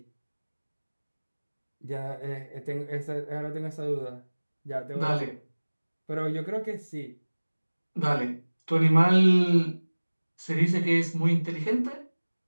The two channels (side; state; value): both; inverted; correlation -1.00